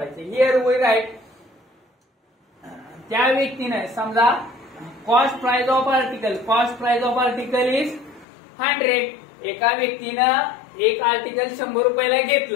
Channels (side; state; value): right; drops out; at 8.2 s